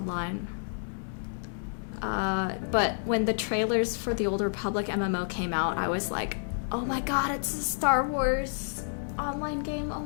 But when the trailers for the Old Republic MMO came out, I was like, oh my god, it's a Star Wars online game. Oh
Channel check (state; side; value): silent; right; digital silence